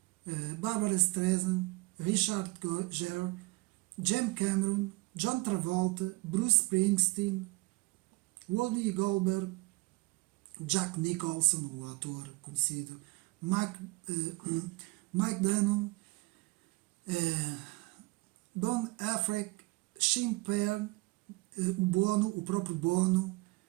Barbara Streisand, Richard Gere, James Cameron, John Travolta, Bruce Springsteen, Whoopi Goldberg, Jack Nicholson, o ator conhecido, Mike Dunham, Don Affleck, Sean Penn, o próprio Bono,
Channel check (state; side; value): quieter; left; 23.7 dB